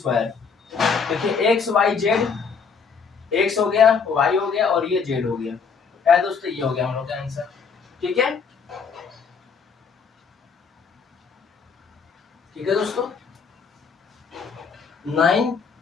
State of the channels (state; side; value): quieter; right; 5.7 dB